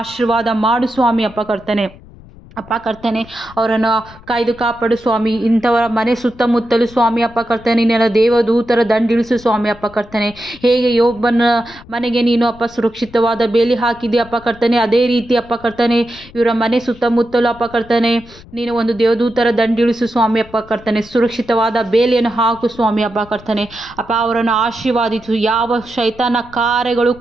ಮಾಡು ಸ್ವಾಮಿ ಅಪ್ಪ ಕರ್ತನೆ. ಅಪ್ಪ ಕರ್ತನೆ ಅವರನ್ನು ಕಾಯ್ದು ಕಾಪಾಡು ಸ್ವಾಮಿ. ಇಂಥವರ ಮನೆ ಸುತ್ತಮುತ್ತಲು ಸ್ವಾಮಿ ಅಪ್ಪ ಕರ್ತನೆ ನಿನ್ನ ದೇವದೂತರ ದಂಡಿಳಿಸು ಸ್ವಾಮಿ ಅಪ್ಪ ಕರ್ತನೆ. ಹೇಗೆ ಯೋಬನ ಮನೆಗೆ ನೀನು ಅಪ್ಪ ಸುರಕ್ಷಿತವಾದ ಬೇಲಿ ಹಾಕಿದೆ ಅಪ್ಪ ಕರ್ತನೆ, ಅದೇ ರೀತಿ ಅಪ್ಪ ಕರ್ತನೆ ಇವರ ಮನೆ ಸುತ್ತಮುತ್ತಲು ಅಪ್ಪ ಕರ್ತನೆ ನೀನು ಒಂದು ದೇವದೂತರ ದಂಡಿಳಿಸು ಸ್ವಾಮಿ ಅಪ್ಪ ಕರ್ತನೆ. ಸುರಕ್ಷಿತವಾದ ಬೇಲಿಯನ್ನು ಹಾಕು ಸ್ವಾಮಿ ಅಪ್ಪ ಕರ್ತನೆ. ಅಪ್ಪ ಅವರನ್ನು ಆಶೀರ್ವಾದಿಸು. ಯಾವ ಶೈತಾನ ಕಾರ್ಯಗಳು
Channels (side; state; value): left; noise; rumble, 21 dB below the sound